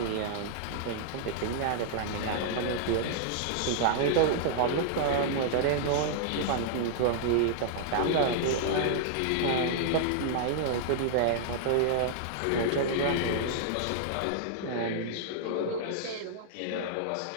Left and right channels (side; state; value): both; different; correlation -0.01